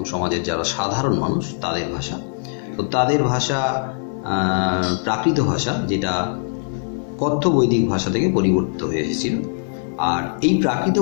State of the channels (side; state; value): right; silent; digital silence